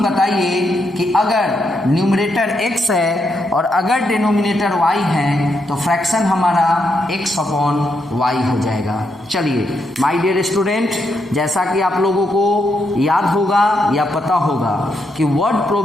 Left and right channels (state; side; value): normal; both; correlation 0.80